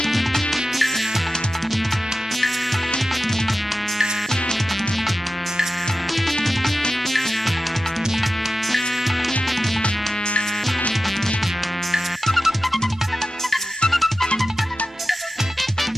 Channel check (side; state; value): both; normal; correlation 0.92